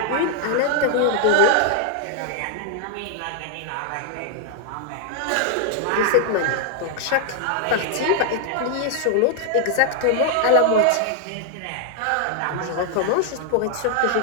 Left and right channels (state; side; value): different; both; correlation 0.00